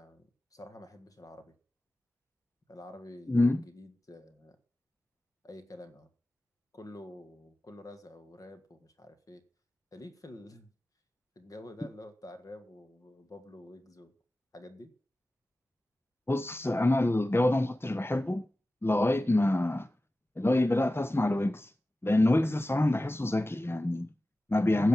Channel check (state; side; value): normal; both; correlation 0.95